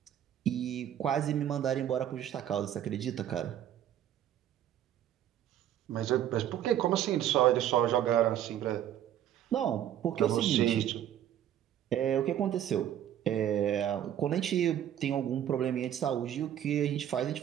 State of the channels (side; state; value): left; quieter; 10.9 dB